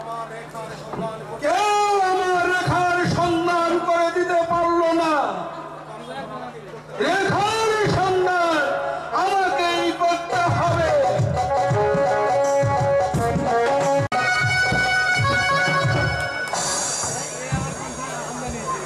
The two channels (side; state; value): both; identical; correlation 1.00